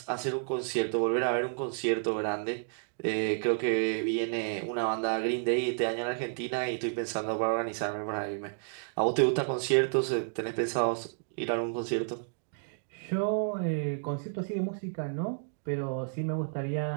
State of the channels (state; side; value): silent; left; digital silence